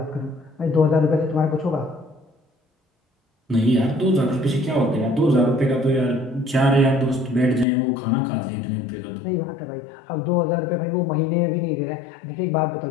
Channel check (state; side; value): drops out; right; at 7.7 s